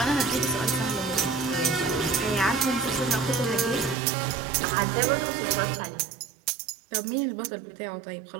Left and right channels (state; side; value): drops out; left; at 4.0 s